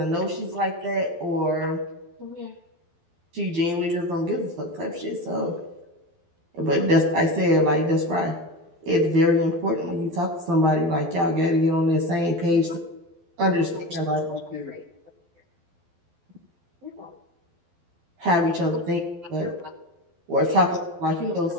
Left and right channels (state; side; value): late; left; 12 ms